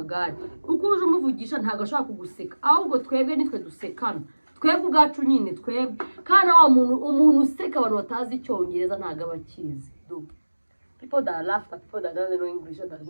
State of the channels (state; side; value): inverted; both; correlation -1.00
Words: ukuje umuvugisha ntago ashaka kuguseka ahubwo twebwe nitwe dusekana twebwe ubwacu nyine twebwe kana wa umuntu useka abantu batazi Icyongereza ntago abakizi. People that laugh at people that don't know English or that